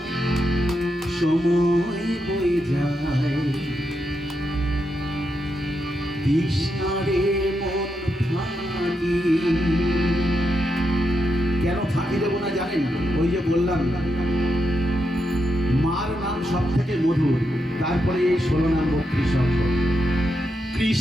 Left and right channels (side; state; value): both; normal; correlation 0.84